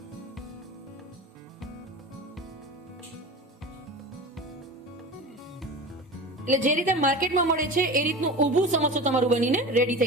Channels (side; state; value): both; normal; correlation 0.32